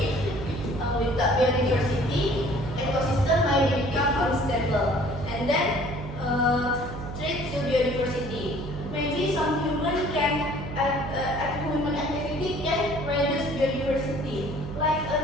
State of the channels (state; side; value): noise; right; hum, 9 dB below the sound